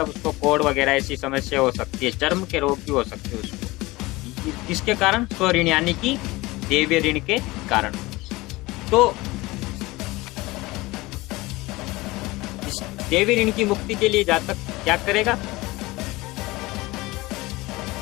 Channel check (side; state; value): right; quieter; 21.0 dB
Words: उसको कोढ़ वगैरह ऐसी समस्या हो सकती है, चर्म के रोग भी हो सकते हैं उसको। किसके कारण? स्वऋण यानी कि देवीय ऋण के कारण। तो इस देवी ऋण की मुक्ति के लिए जातक क्या करेगा?